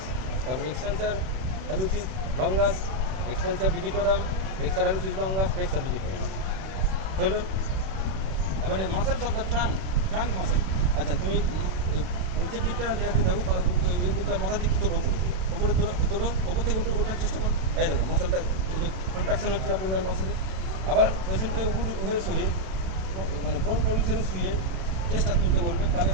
তারপরে extensor hallucis longus, extensor digitorum, flexor hallucis longus, flexor digitorum হলো। এবারে muscles of the trunk muscle. আচ্ছা, তুমি নিচের দিকটা দেখে দেখো, এই দিকটা মাথার দিকটা তোলো, উপরে তোলো, ওপর থেকে ওঠার চেষ্টা করো। এই দেখো মাসেলটা কন্ট্রাকশন হচ্ছে অ্যাবডোমিনাল মাসেলে। আবার পেশেন্টকে উপর হয়ে শুয়ে, মানে প্রোন পজিশনে শুয়ে চেষ্টা তুলতে বলবে, তাহলে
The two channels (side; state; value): left; late; 31 ms